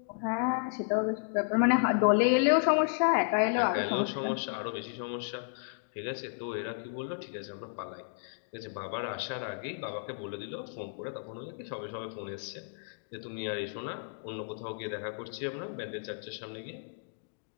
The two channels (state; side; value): silent; right; digital silence